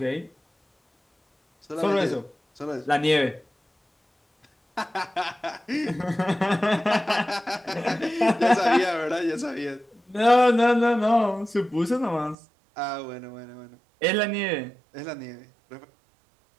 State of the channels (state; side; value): drops out; left; at 12.4 s